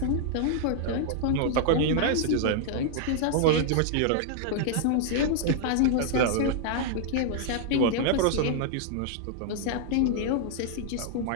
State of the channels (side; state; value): both; different; correlation 0.00